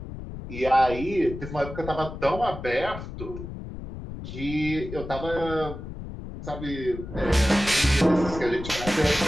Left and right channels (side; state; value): left; noise; rumble, 10 dB below the sound